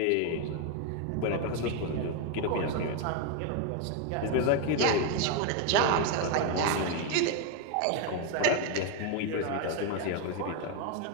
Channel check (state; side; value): different; both; correlation 0.01